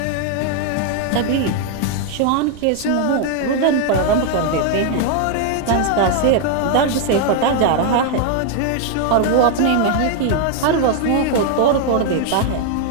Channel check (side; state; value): both; different; correlation 0.00